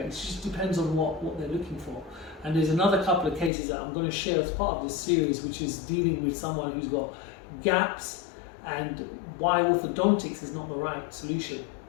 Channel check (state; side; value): drops out; right; at 3.5 s